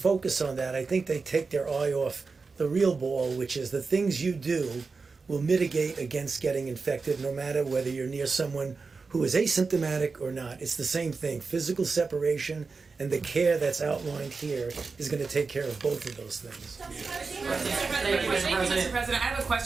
on that, I think they take their eye off the real ball, which is the things you do will mitigate against getting infected no matter whether you're near someone who is asymptomatic or not. It's the same thing. Physical separation and the care that's outlined here is going to take care of both of those things. Thank you, Mr. President. I have a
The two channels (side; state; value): left; quieter; 4.5 dB